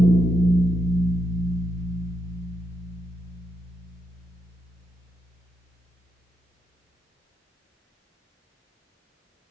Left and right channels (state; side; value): normal; both; correlation 0.82